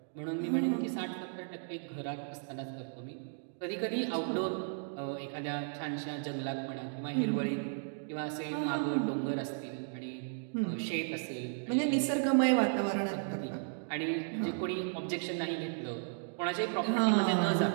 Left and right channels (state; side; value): silent; left; digital silence